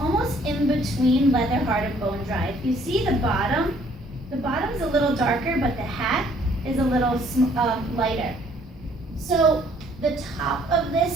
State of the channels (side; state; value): both; normal; correlation 0.62